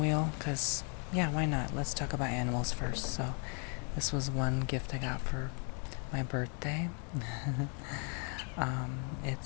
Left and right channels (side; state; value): right; quieter; 39.3 dB